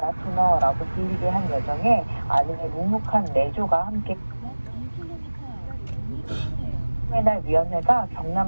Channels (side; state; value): both; inverted; correlation -1.00